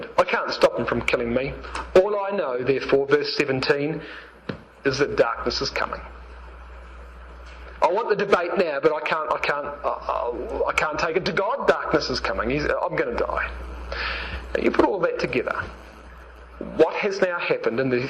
I can't stop him from killing me. All I know, therefore, verse 17, is that darkness is coming. I want the debate now, but I can't take it to God. Darkness is coming. I'm going to die. Now you put all that together. What has now happened in the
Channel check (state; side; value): identical; both; correlation 1.00